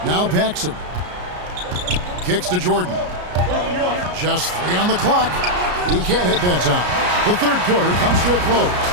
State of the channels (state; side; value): late; left; 34 ms